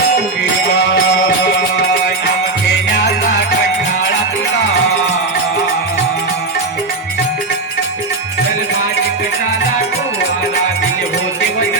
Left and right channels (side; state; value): left; quieter; 3.3 dB